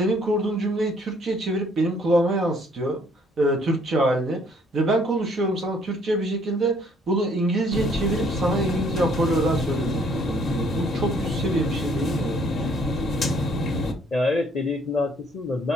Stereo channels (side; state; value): both; normal; correlation 0.62